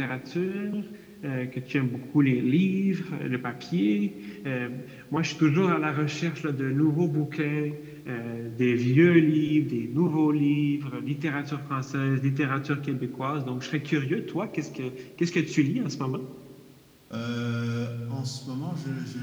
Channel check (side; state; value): both; identical; correlation 1.00